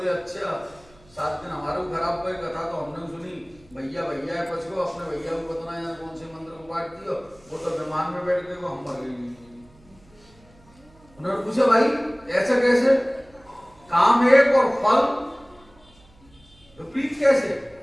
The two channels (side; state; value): right; noise; hum, 28 dB below the sound